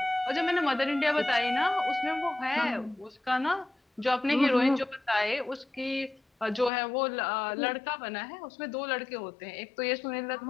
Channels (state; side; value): drops out; right; at 6.7 s